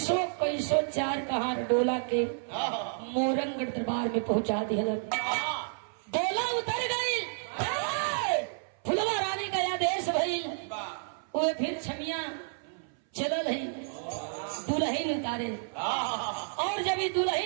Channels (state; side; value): silent; left; 57 dB below the other